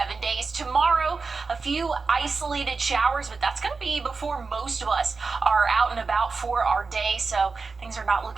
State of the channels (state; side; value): quieter; left; 4.4 dB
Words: days. Tomorrow, a few isolated showers, but that's going to be before most of us are out and about for our day, so things are not